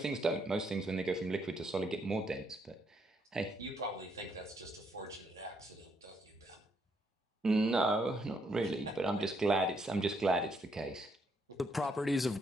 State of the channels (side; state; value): both; normal; correlation 0.73